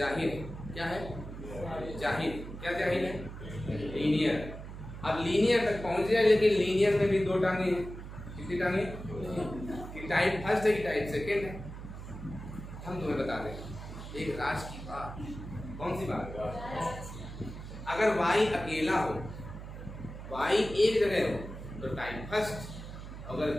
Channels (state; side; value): noise; right; hum, 11 dB below the sound